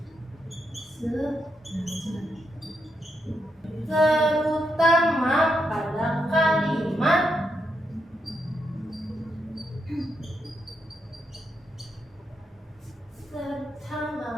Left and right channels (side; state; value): both; normal; correlation 0.82